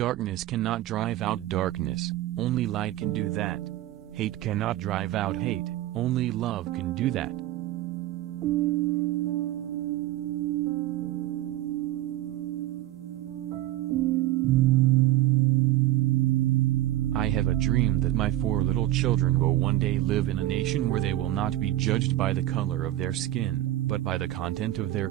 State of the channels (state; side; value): quieter; left; 14.6 dB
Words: cannot drive out darkness, only light can do that. Hate cannot drive out hate, only love can do that. I have a dream that my 4 little children will one day live in a nation where they will not be judged by the color of their skin, but by the content of their